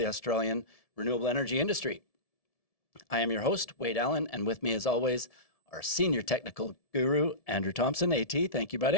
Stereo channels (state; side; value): late; right; 1.7 ms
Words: Australian renewable energy industry. I am your host, Wade Allen, and with me as always, our senior technical guru, Andrew Thompson. AT, thank you,